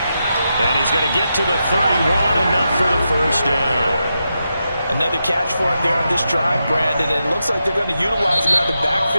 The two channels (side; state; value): both; inverted; correlation -0.87